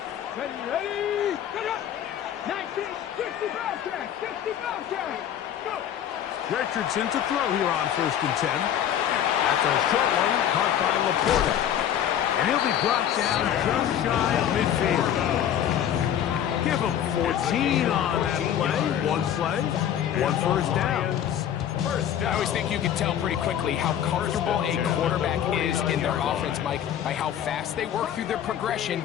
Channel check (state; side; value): quieter; right; 10.1 dB